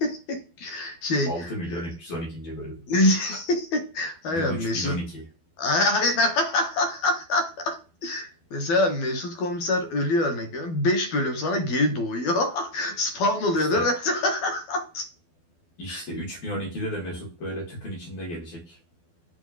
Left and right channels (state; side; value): late; right; 12 ms